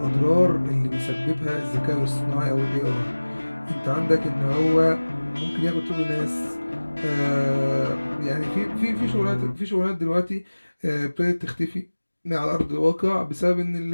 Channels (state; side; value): inverted; both; correlation -1.00